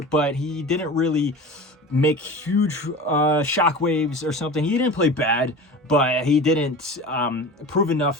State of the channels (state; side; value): normal; both; correlation 0.34